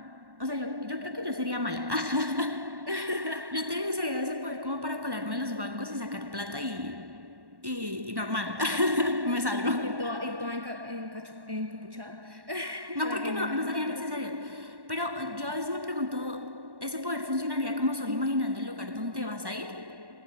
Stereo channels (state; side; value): late; left; 1.1 ms